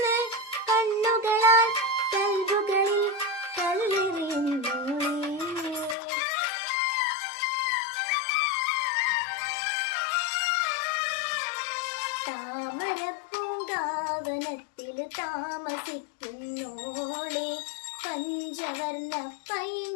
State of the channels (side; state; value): right; drops out; at 6.0 s